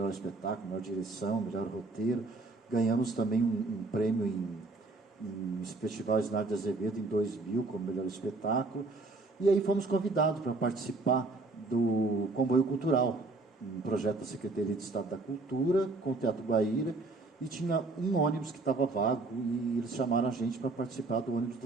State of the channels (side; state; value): left; quieter; 3.3 dB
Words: espetáculo, melhor direção, melhor roteiro. Ganhamos também um prêmio em Festival Isnardo de Azevedo, em 2000, como melhor espetáculo. E aí fomos convidados para participar do Comboio Cultural, um projeto da Secretaria de Estado da Cultura, com o Teatro Guaíra, e tinha um ônibus que estava vago, e eles chamaram a gente para participar do ônibus do